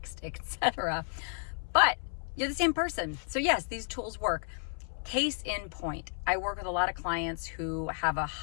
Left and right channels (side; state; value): right; silent; 56 dB below the other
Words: etc. But you're the same person. So yes, these tools work. Case in point, I work with a lot of clients who have a